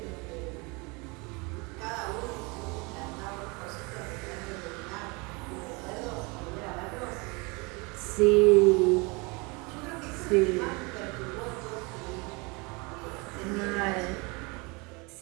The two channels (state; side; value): quieter; left; 28.1 dB